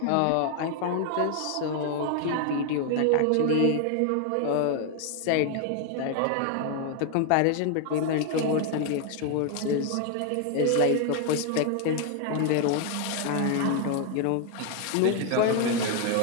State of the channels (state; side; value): different; both; correlation 0.00